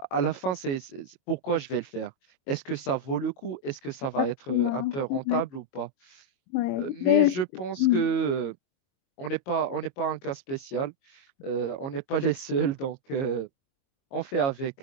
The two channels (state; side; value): late; right; 22 ms